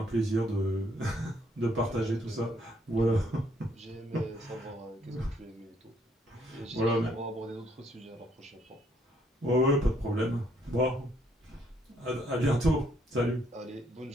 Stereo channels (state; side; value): normal; both; correlation 0.69